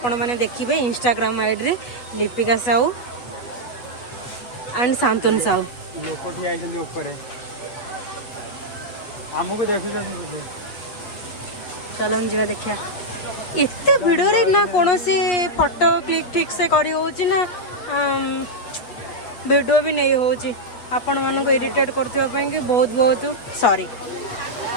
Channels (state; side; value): late; right; 8.2 ms